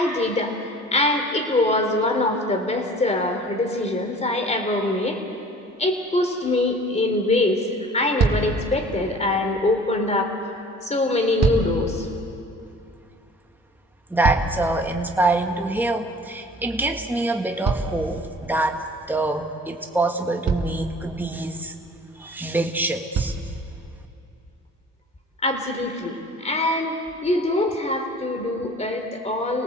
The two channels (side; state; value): both; normal; correlation 0.47